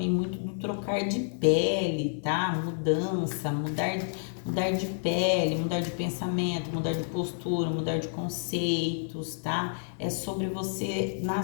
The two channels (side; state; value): right; silent; digital silence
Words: muito do trocar de pele, tá? Mudança, mudar de pele, mudar de pensamento, mudar de postura, mudar de conceitos, tá? É sobre você